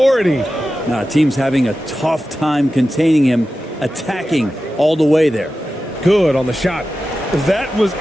Now, team's having a tough time containing him, attacking all the way there. Good on the shot. That was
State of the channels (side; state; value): both; normal; correlation 0.93